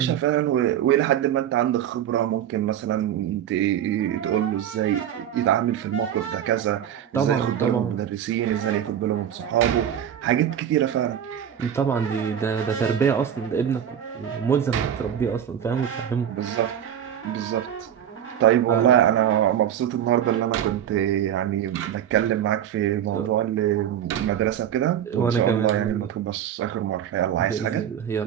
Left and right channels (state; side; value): quieter; left; 9.8 dB